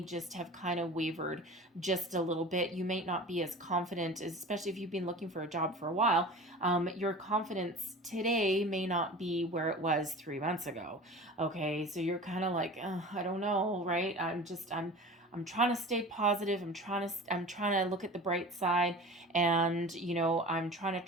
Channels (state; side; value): normal; both; correlation 0.36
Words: just have kind of wavered just a little bit. You may not be as confident, especially if you've been looking for a job for a while. Your confidence today may not be where it was 3 months ago. Okay, so you're kind of like, I don't know, right? I'm trying to stay positive. I'm trying to look at the bright side, and I'm trying to